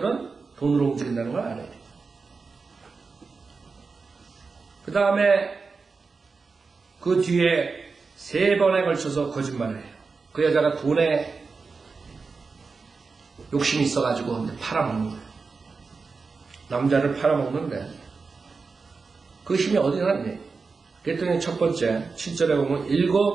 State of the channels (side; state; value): left; quieter; 4.5 dB